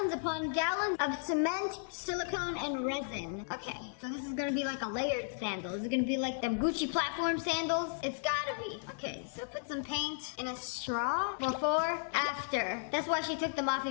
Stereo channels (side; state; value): right; silent; 55 dB below the other